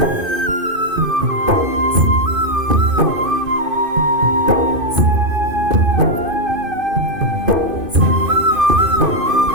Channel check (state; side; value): late; left; 2.5 ms